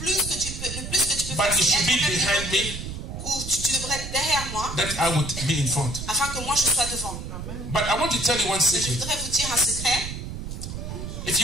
que tu peux But faire, you c'est should be être même behind me, ou tu devrais être derrière moi, that I would be in front. afin que moi je sois devant. But I want to tell you one Je secret. voudrais vous dire un secret. If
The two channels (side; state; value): right; noise; rumble, 7 dB below the sound